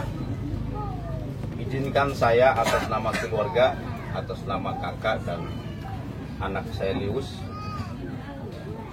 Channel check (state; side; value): identical; both; correlation 1.00